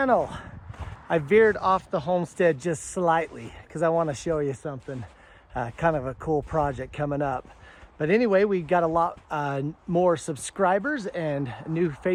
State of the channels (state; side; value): identical; both; correlation 1.00